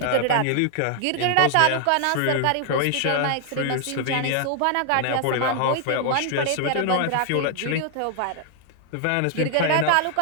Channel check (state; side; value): different; both; correlation 0.00